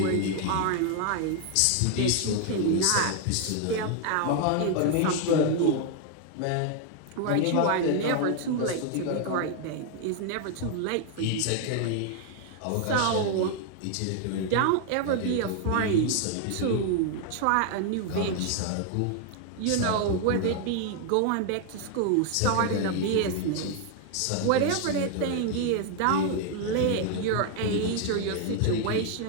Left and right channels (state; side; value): different; both; correlation 0.00